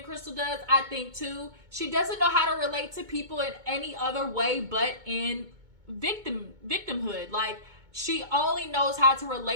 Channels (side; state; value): left; late; 2.2 ms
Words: Crystal does. I think too, she doesn't know how to relate to people in any other way but in victimhood. Like, she only knows how to